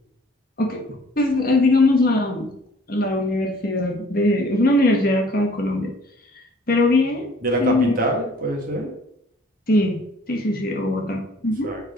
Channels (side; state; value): both; normal; correlation 0.55